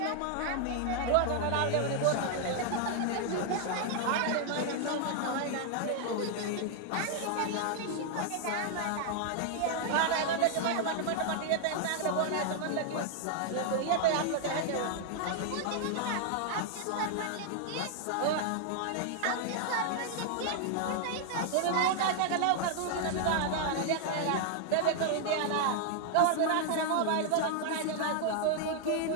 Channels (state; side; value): different; both; correlation 0.00